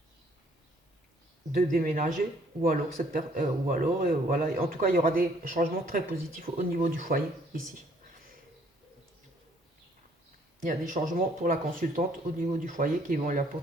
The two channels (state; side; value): normal; both; correlation 0.63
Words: de déménager, ou alors voilà. En tout cas, il y aura des changements très positifs au niveau du foyer ici. Il y a des changements pour la consultante au niveau du foyer qui vont lui